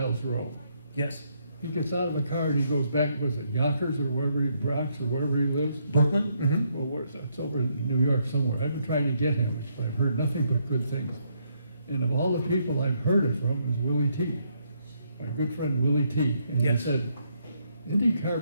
Rowe, Yes. he gets out of the car and he goes back, was it Yonkers or wherever Bronx or wherever he lives? Brooklyn? Mm-hmm. Well, where's that? It's over in New York somewhere. I've been trying to get him, but I've heard nothing but good things. And of all the people I've heard it from was Willie T, my good friend Willie T. And Yes. he said,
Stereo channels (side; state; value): both; inverted; correlation -0.74